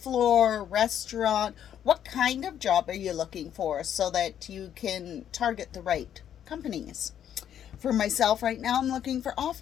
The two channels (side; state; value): right; quieter; 9.8 dB